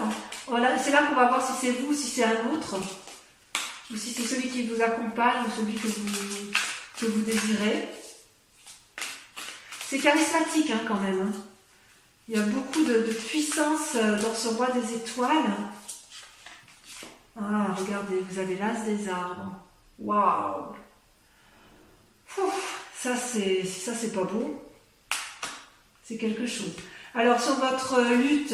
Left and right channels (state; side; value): identical; both; correlation 1.00